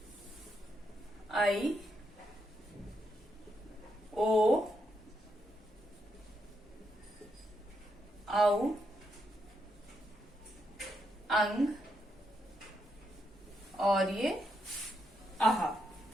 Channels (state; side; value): normal; both; correlation 0.80